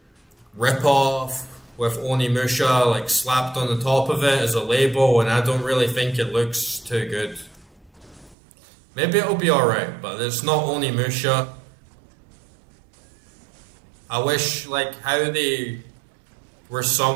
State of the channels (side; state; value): left; drops out; at 8.3 s